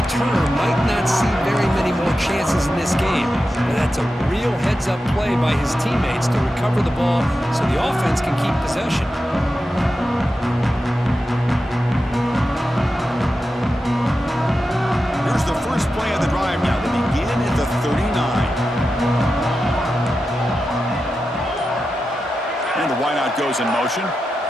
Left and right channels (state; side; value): normal; both; correlation 0.91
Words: might not see very many more chances in this game. But that's a real heads-up play by his teammates to recover the ball so the offense can keep possession. Here's the first play of the drive now. They begin at the 39. And the wideout goes in motion.